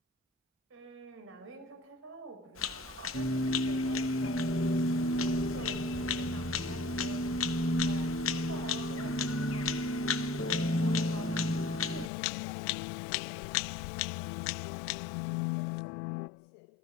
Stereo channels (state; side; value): drops out; right; at 12.1 s